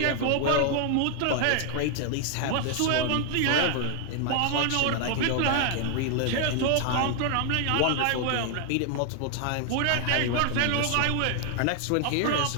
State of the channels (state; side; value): different; both; correlation 0.00